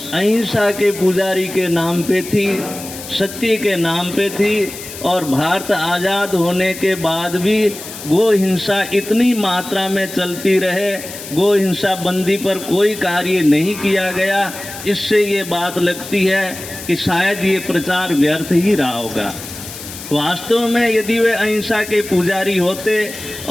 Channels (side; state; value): left; noise; hiss, 12 dB below the sound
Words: अहिंसा के पुजारी के नाम पे थी, सत्य के नाम पे थी, और भारत आज़ाद होने के बाद भी गो हिंसा इतनी मात्रा में चलती रहे, गो हिंसा बंदी पर कोई कार्य नहीं किया गया। इससे ये बात लगती है कि शायद ये प्रचार व्यर्थ ही रहा होगा। वास्तव में यदि वे अहिंसा के पुजारी होते